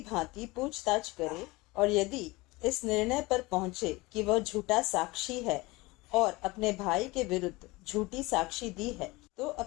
भांति पूछताछ करे, और यदि इस निर्णय पर पहुंचे कि वह झूठा साक्षी है और अपने भाई के विरुद्ध झूठी साक्षी दी है, तो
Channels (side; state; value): right; quieter; 22.5 dB